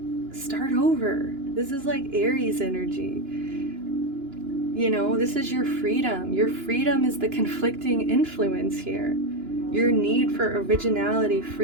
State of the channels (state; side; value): late; left; 2.9 ms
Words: over. This is like Aries energy. You know, this is your freedom. Your freedom is the conflicting influence here. Your need for originality,